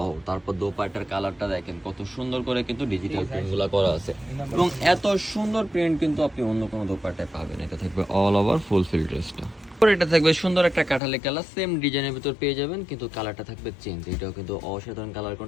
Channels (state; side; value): drops out; right; at 11.0 s